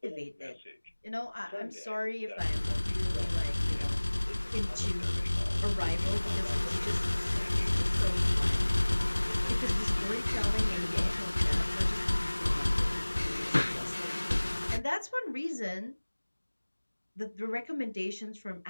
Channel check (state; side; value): inverted; both; correlation -1.00